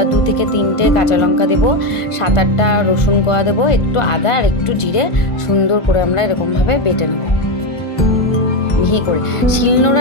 2 থেকে 3টে কাঁচা লঙ্কা দেবো, 7-8টা রসুন কোয়া দেবো, একটু আদা আর একটু জিরে সুন্দর করে আমরা এরকমভাবে বেটে নেব মিহি করে।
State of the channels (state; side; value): late; right; 1.5 ms